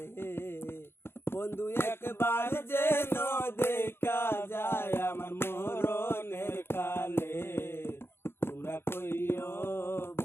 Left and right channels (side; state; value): right; late; 0.11 ms